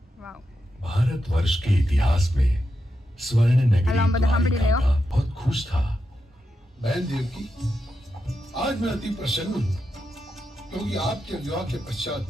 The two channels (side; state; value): both; normal; correlation 0.87